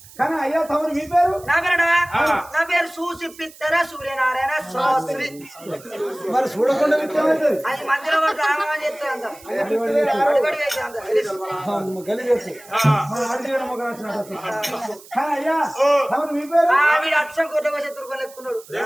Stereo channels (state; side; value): noise; right; hiss, 21 dB below the sound